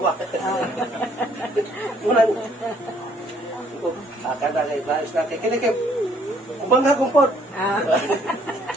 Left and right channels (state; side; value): normal; both; correlation 0.64